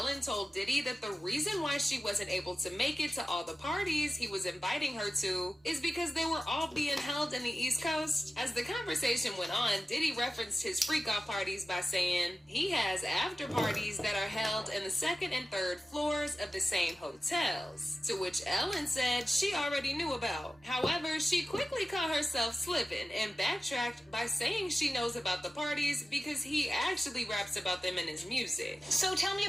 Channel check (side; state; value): both; normal; correlation 0.95